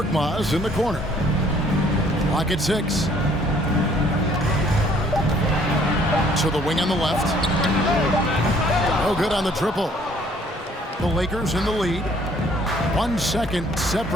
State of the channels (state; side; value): normal; both; correlation 0.60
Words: in the corner. Clock at 6. To the wing on the left. Oh, good on the triple. The Lakers in the lead. 1 second